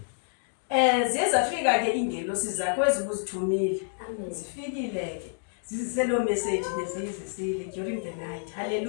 Ziye zafika ke ingelosi zakho ezibuzithumile. Zifikile ke. Ziselo message bezizisile during the night.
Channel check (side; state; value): right; silent; digital silence